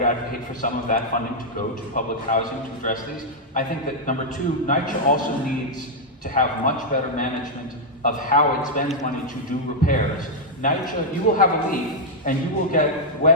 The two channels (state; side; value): normal; both; correlation -0.04